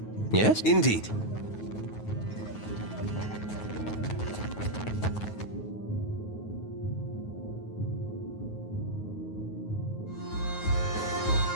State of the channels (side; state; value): right; late; 9.4 ms